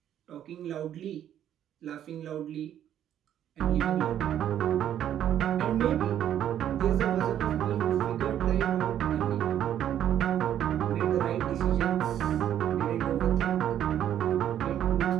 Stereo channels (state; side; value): quieter; left; 10.6 dB